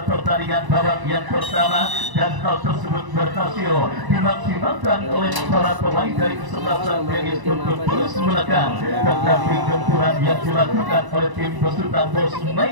pertandingan babak yang pertama, dan hal tersebut berhasil dimaksimalkan oleh para pemain dari kesebelasan Dennis untuk terus menekan. Tetapi gempuran yang dilakukan oleh tim besutan Bos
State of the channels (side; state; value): left; late; 1.0 ms